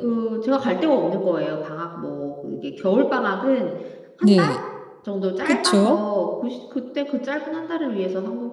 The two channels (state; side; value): identical; both; correlation 1.00